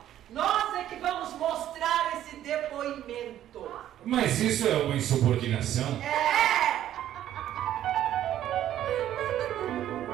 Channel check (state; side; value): quieter; left; 11.9 dB